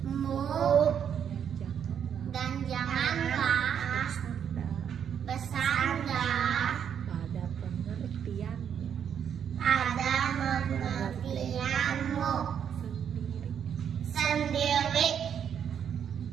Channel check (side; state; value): left; quieter; 8.3 dB